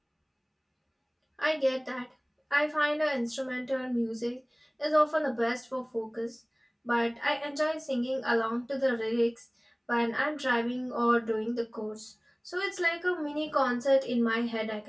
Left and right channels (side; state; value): both; identical; correlation 1.00